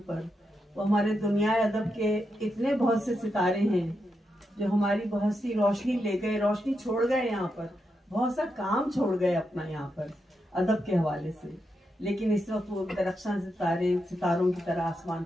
पर, वो हमारे दुनिया अदब के इतने बहुत से सितारे हैं जो हमारी बहुत सी रोशनी ले गए, रोशनी छोड़ गए, यहाँ पर बहुत सा काम छोड़ गए अपना यहाँ पर अदब के हवाले से, लेकिन इस वक्त वो दरख्शां सितारों की तरह आसमान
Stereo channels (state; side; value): normal; both; correlation 0.85